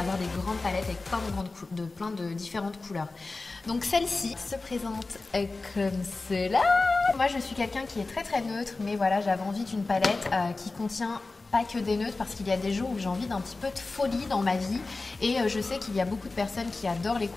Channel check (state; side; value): quieter; right; 3.5 dB